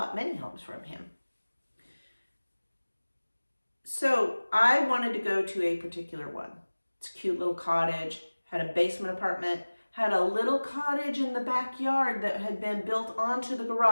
many homes from him. So I wanted to go to a particular one. It's a cute little cottage, had a basement apartment, had a little cottage in the backyard that had been built onto the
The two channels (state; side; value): inverted; both; correlation -1.00